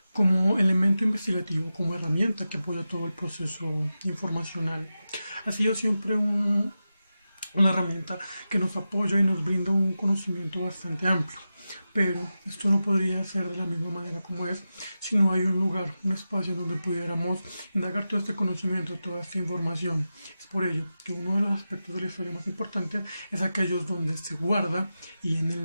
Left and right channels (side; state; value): both; inverted; correlation -0.92